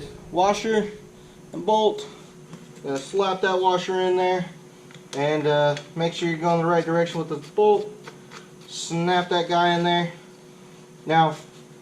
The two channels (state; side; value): identical; both; correlation 1.00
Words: washer and bolt. Gonna slap that washer in there, and make sure you're going the right direction with the bolt. Snap that guy in there. Now,